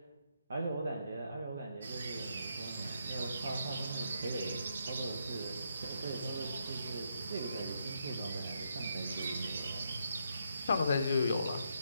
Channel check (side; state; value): both; inverted; correlation -0.78